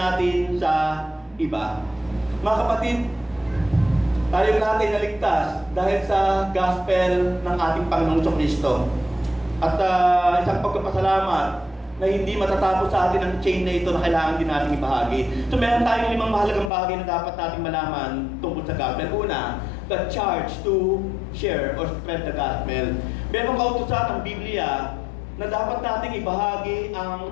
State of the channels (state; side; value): drops out; right; at 16.7 s